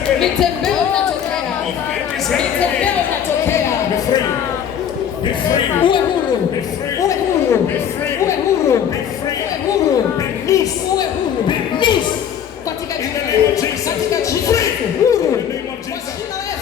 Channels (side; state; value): right; quieter; 8.9 dB